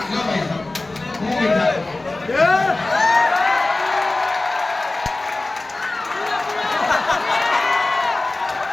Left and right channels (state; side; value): quieter; right; 3.0 dB